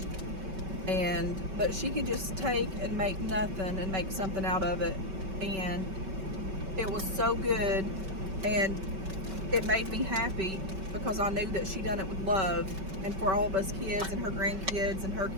But she could just take and make nothing and make something out of it, and it was so good, and it made me happy because I knew that she done it with love, and for all of us kids and her grandkids and her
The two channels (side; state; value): left; late; 5.3 ms